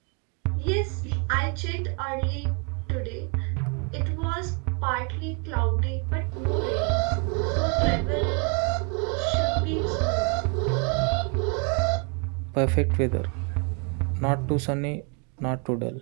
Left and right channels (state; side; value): quieter; left; 35.8 dB